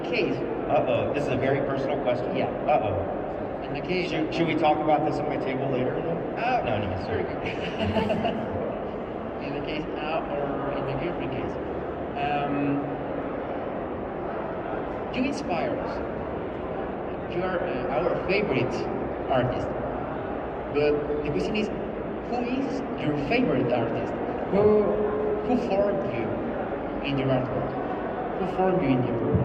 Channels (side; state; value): both; identical; correlation 1.00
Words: This is a very personal question? Yeah. In my case. Should we talk about this at my table later? No, sorry. In the case, or in the girlfriend case. You inspire us. You are our favorite artist. But the question is, who is your favorite artist? Who formed you in your artwork? Who formed you in your